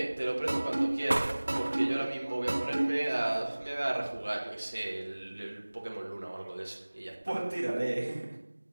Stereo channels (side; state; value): both; inverted; correlation -1.00